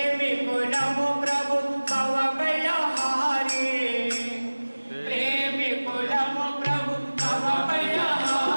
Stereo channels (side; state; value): both; inverted; correlation -1.00